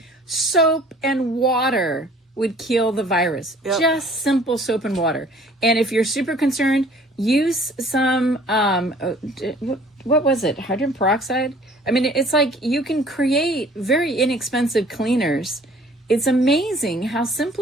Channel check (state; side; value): normal; both; correlation 0.53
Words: Soap and water would kill the virus. Yep. Just simple soap and water. And if you're super concerned, use some, what was it? Hydrogen peroxide? I mean, it's like you can create very inexpensive cleaners. It's amazing how